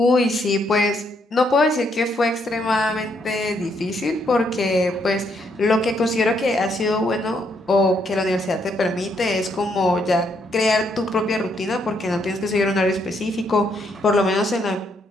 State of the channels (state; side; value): normal; both; correlation 0.74